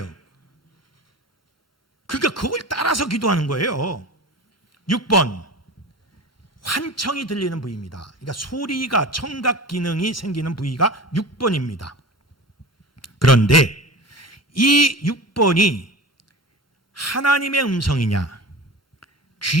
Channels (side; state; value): both; normal; correlation 0.33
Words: 그러니까 그걸 따라서 기도하는 거예요. 6번, 환청이 들리는 부위입니다. 그러니까 소리가, 청각 기능이 생기는 부위가 6번입니다. 그런데 이 6번이 하나님의 음성이냐,